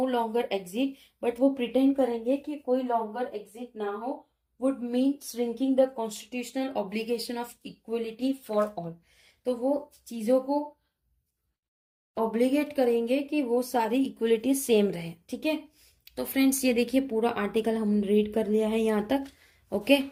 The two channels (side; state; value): both; identical; correlation 1.00